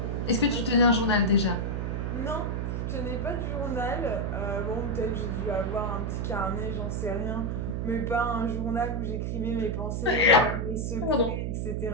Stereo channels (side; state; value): right; noise; hum, 1 dB below the sound